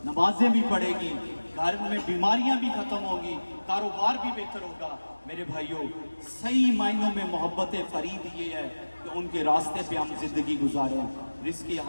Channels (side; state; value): both; inverted; correlation -1.00